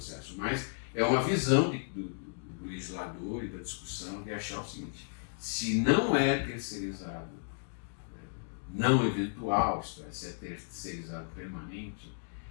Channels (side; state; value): right; silent; digital silence